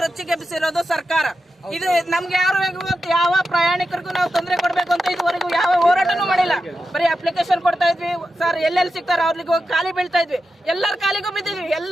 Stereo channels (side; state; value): both; normal; correlation 0.89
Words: ರೊಚ್ಚಿಗೆಬ್ಬಿಸಿರೋದು ಸರ್ಕಾರ. ಇದು ನಮ್ಗೆ ಯಾವ ಪ್ರಯಾಣಿಕರಿಗೂ ನಾವು ತೊಂದರೆ ಕೊಡ್ಬೇಕು ಅಂತ ಇದುವರೆಗೂ ಯಾವ ಹೋರಾಟನೂ ಮಾಡಿಲ್ಲ. ಬರೀ ಅಪ್ಲಿಕೇಶನ್ ಕೊಡ್ತಾ ಇದ್ವಿ ಸರ್, ಎಲ್ಲೆಲ್ಲಿ ಸಿಗ್ತಾರ ಅವ್ರಿಗೆ ಹೋಗಿ ಖಾಲಿ ಬೀಳ್ತಾ ಇದ್ವಿ. ಎಲ್ಲರ ಕಾಲಿಗೂ ಬಿದ್ದಿದ್ವಿ,